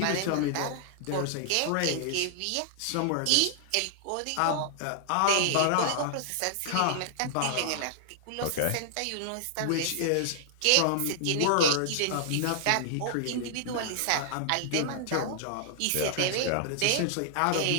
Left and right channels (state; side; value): different; both; correlation -0.01